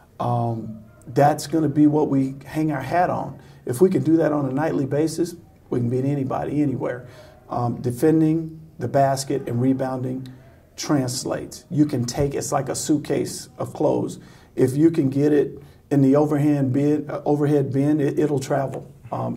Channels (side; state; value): both; identical; correlation 1.00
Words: That's going to be what we hang our hat on. If we can do that on a nightly basis, we can beat anybody, anywhere. Defending the basket and rebounding translates. You can take it's like a suitcase of clothes. If you can get it in the overhead bin, it'll travel.